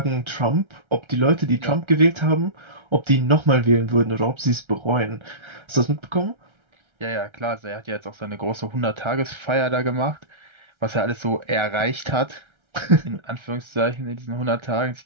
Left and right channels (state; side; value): late; left; 1.3 ms